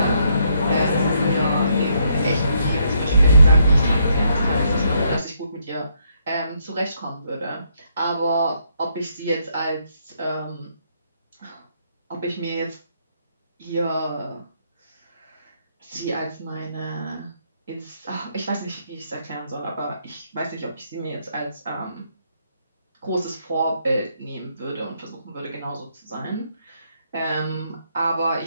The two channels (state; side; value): inverted; both; correlation -0.73